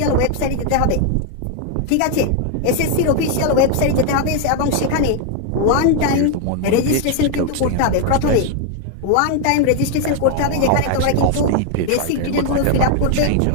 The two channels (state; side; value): different; both; correlation 0.00